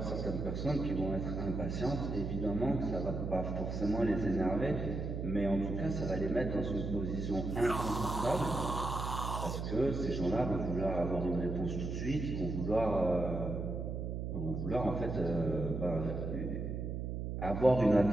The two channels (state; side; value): noise; right; hum, 3 dB below the sound